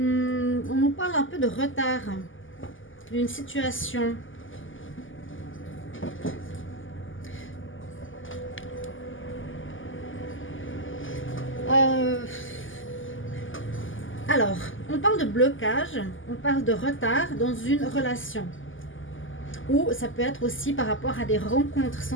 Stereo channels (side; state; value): right; late; 0.58 ms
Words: parle un peu de retard d'une situation. Alors, on parle de blocage, on parle de retard dans une relation. Ou ça peut être aussi par rapport à des rencontres